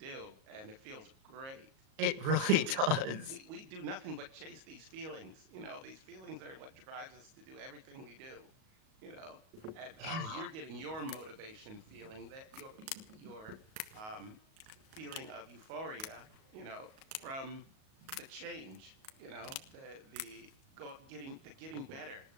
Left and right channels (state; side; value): late; left; 38 ms